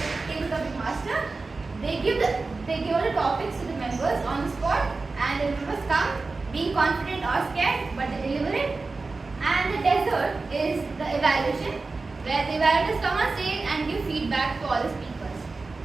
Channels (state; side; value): quieter; left; 3.8 dB